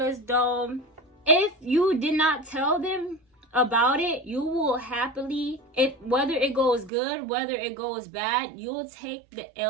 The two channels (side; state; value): left; drops out; at 6.9 s